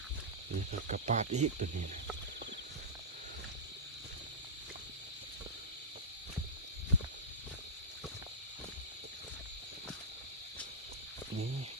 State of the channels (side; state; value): both; normal; correlation -0.13